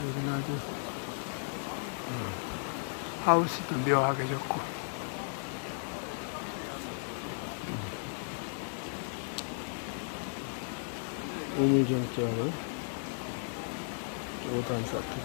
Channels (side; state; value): right; silent; 55 dB below the other